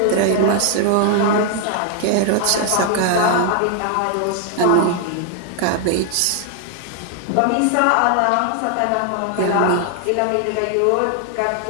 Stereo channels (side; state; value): both; different; correlation 0.00